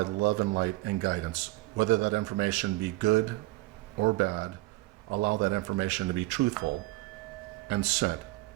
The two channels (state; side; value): quieter; left; 19.7 dB